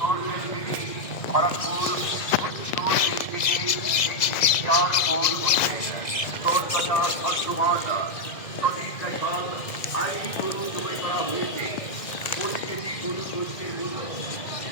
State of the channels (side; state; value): right; late; 1.9 ms